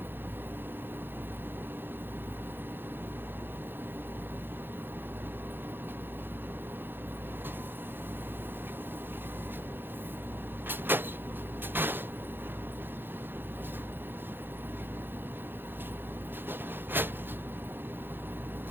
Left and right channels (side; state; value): left; late; 0.10 ms